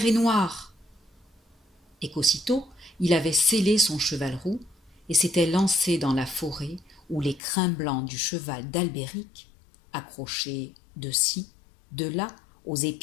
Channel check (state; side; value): drops out; right; at 7.4 s